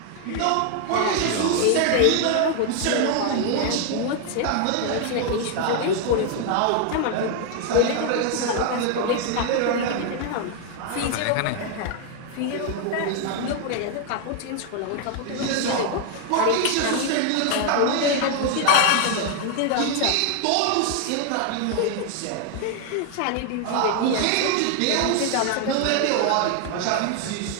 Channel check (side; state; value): both; different; correlation 0.00